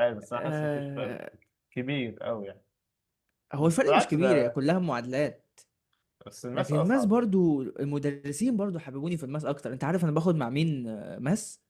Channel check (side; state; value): both; identical; correlation 1.00